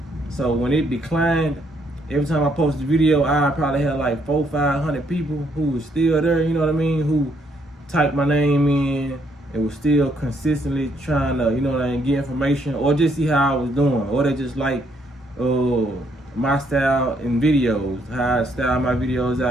So when it declined, every time I post a video, I probably had like 400-500 people who was still there, you know what I mean? Who typed my name in and was still consistently trying to, you know what I mean, get information or just see how I was doing. Or they just like my style in videos, how I style my videos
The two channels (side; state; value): both; normal; correlation 0.71